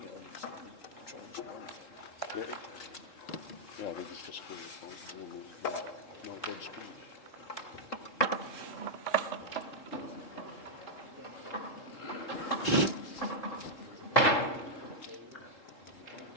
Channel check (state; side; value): late; right; 3.8 ms